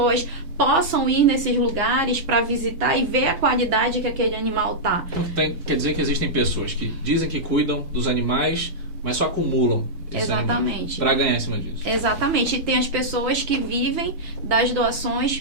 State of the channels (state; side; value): late; left; 6.1 ms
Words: possam ir nesses lugares para visitar e ver a qualidade que aquele animal tá. Então, quer dizer que existem pessoas que dizem que cuidam dos animais, mas só acumulam Exatamente. Para ganhar em cima disso. Exatamente. E tem as pessoas que vivem das